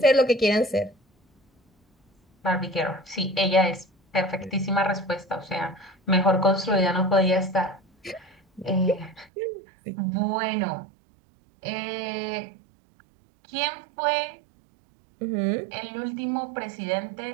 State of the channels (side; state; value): left; drops out; at 9.3 s